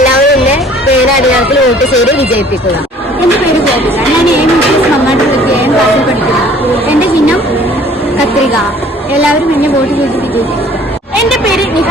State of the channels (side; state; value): both; normal; correlation 0.53